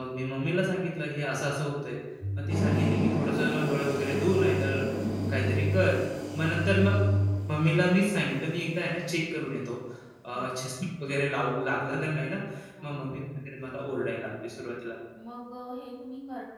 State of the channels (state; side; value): identical; both; correlation 1.00